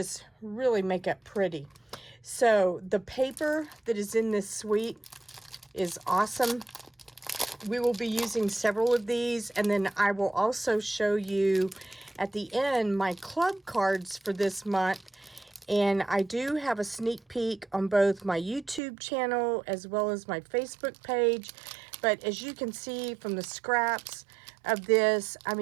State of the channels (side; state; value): left; drops out; at 18.8 s